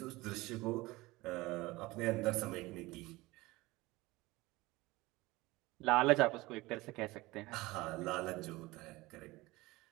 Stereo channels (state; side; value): quieter; left; 20.6 dB